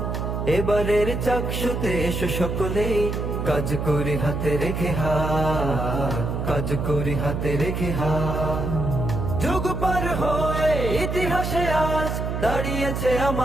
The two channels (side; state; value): right; noise; hum, 2 dB below the sound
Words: এবারের চাকসুতে এসো সকলেই, কাজ করি হাতে রেখে হাত, কাজ করি হাতে রেখে হাত। যুগ পার হয়ে ইতিহাসে আজ দাঁড়িয়েছে